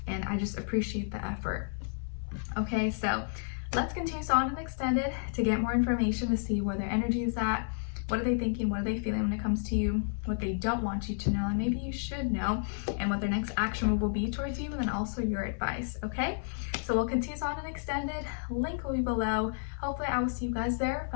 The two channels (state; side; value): silent; right; 57 dB below the other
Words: and I just appreciate the effort. Okay, so let's continue on and extend it to get more information, to see where their energy is at, What are they thinking? What are they feeling when it comes to you? What they don't want you to know, and maybe you should know, and what their next action move will be towards you, and then also your advice, okay? So we'll continue on an extended. Link will be below. Hopefully I will see you guys there. If